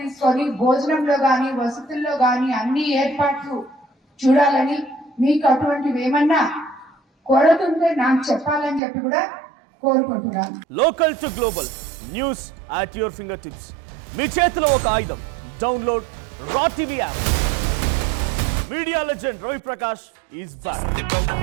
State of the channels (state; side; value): drops out; left; at 8.8 s